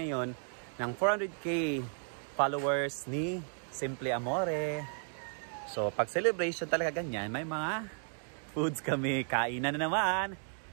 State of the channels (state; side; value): silent; left; 55 dB below the other